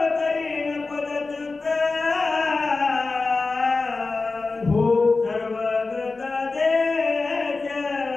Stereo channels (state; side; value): quieter; right; 3.8 dB